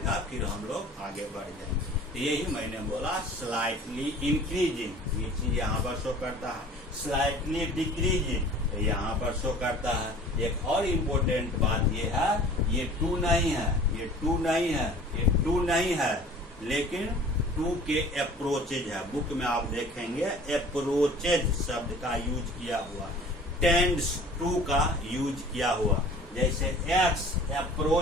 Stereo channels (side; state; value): both; normal; correlation 0.46